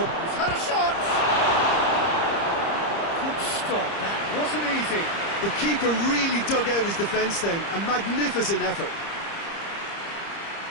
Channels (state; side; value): late; right; 30 ms